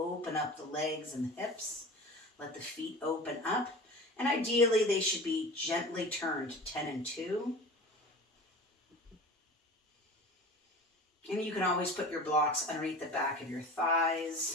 up the legs and the hips. Let the feet open up. And ideally, they should be gently turned 10 and 2. And you can always put your blocks underneath the back of your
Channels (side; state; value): both; normal; correlation 0.36